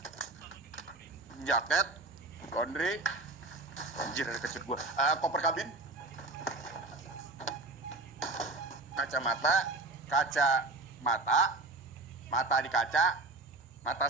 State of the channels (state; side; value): quieter; left; 3.1 dB